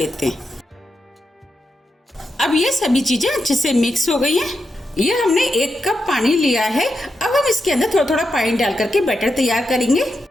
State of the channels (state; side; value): normal; both; correlation 0.86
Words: हैं। अब ये सभी चीजें अच्छे से मिक्स हो गई हैं। ये हमने 1 कप पानी लिया है। अब हम इसके अंदर थोड़ा थोड़ा पानी डाल करके बैटर तैयार करेंगे।